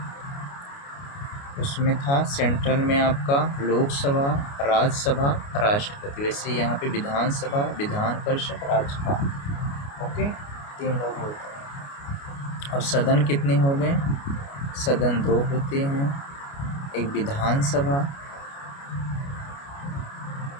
उसमें था सेंट्रल में आपका लोकसभा, राज्यसभा, राष्ट्रपति, वैसे यहाँ पे विधानसभा, विधान परिषद, राज्यपाल। ओके, 3 लोग होते हैं। अब सदन कितने हो गए, सदन 2 होते हैं। एक विधानसभा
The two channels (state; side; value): late; right; 29 ms